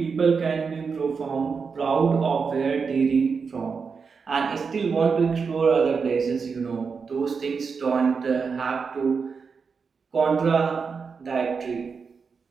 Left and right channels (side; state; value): left; quieter; 5.4 dB